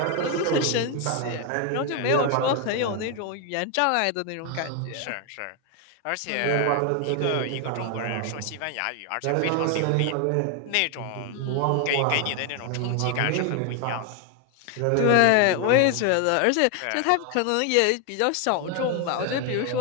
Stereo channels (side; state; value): both; different; correlation 0.01